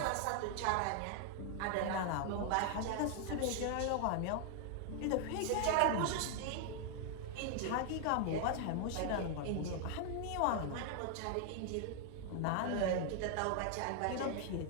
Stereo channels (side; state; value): both; different; correlation 0.00